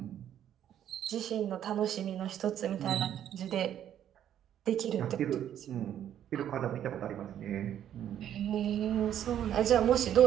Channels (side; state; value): left; quieter; 10.5 dB